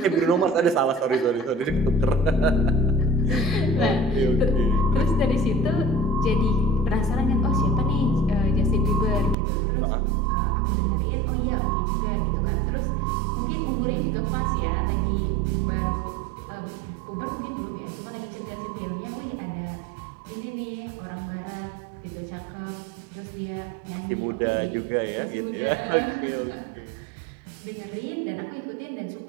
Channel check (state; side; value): drops out; left; at 9.3 s